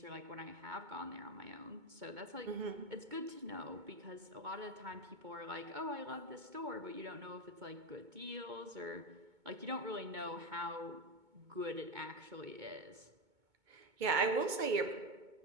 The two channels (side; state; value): left; late; 2.2 ms